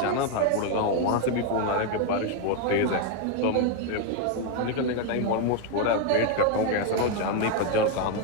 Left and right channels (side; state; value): both; different; correlation 0.01